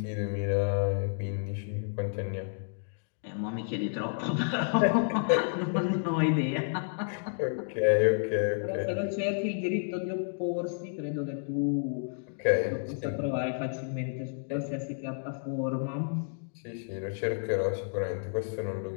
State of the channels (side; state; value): right; silent; digital silence